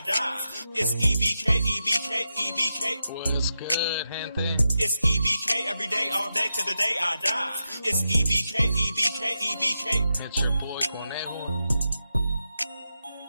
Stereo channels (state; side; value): inverted; both; correlation -0.88